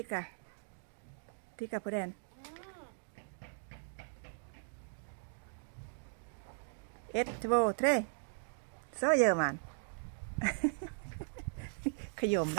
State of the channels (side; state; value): left; silent; digital silence